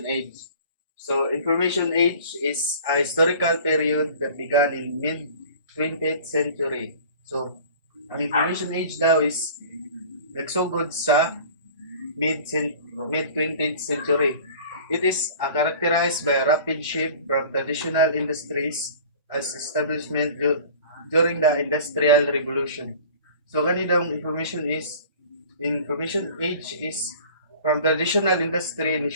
age. So, information age is a historical period that began in mid 20th century. So, ang information age daw is nagsugod sa mid 20th century. It is characterized by a rapid shift from traditional industries as establishment during the Industrial Revolution. So ganitong information age is from traditional industry ni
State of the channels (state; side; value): inverted; both; correlation -0.44